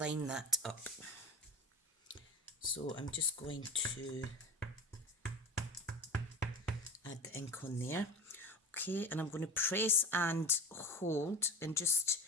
that up. So I'm just going to add the ink on there. Okay, and I'm going to press and hold and just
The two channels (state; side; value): normal; both; correlation 0.28